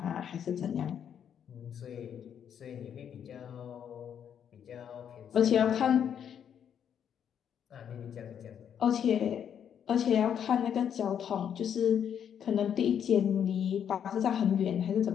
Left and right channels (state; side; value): quieter; right; 8.6 dB